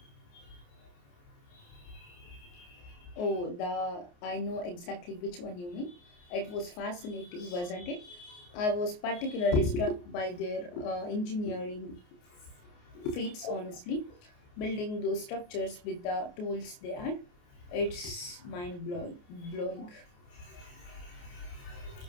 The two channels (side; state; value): right; late; 28 ms